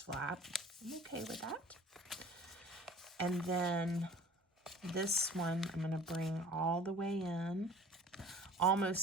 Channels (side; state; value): both; normal; correlation 0.46